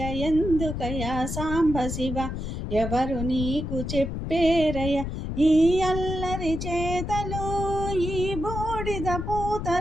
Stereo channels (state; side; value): noise; left; rumble, 5 dB below the sound